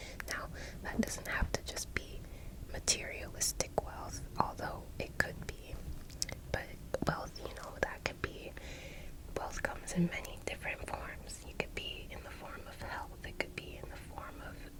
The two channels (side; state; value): both; identical; correlation 1.00